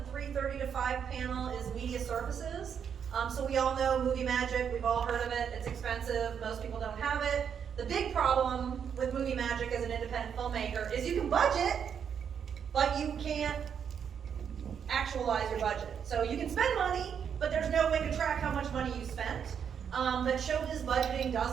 3:30 to 5 panel is media services. So we all know Movie Magic, we've all heard of it, it's expensive, most people don't have it. The big problem with Movie Magic as an independent filmmaker is you can budget, but you can't actualize your budget. So you can spend money, but there's no way to track how much money you spent. But Showbiz Budgeting does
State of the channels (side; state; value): left; quieter; 7.7 dB